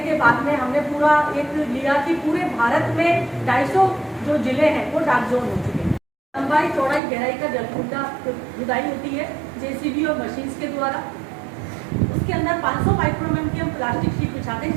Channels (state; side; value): drops out; left; at 7.0 s